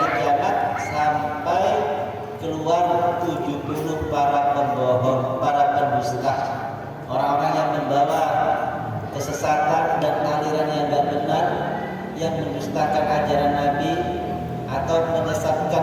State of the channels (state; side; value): identical; both; correlation 1.00